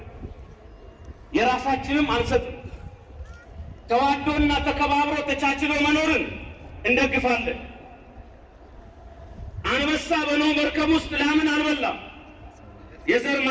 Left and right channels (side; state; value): both; identical; correlation 1.00